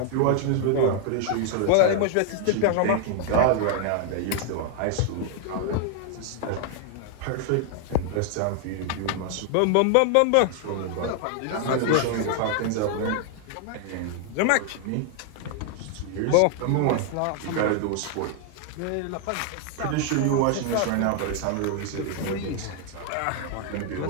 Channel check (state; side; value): different; both; correlation 0.00